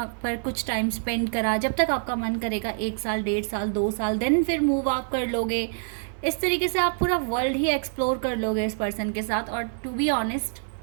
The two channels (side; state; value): left; silent; digital silence